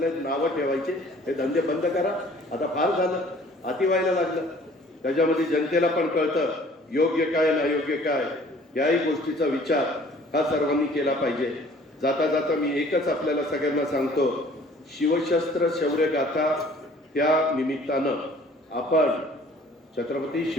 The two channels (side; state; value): both; normal; correlation 0.53